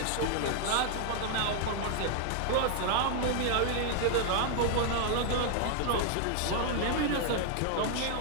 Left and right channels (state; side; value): different; both; correlation 0.00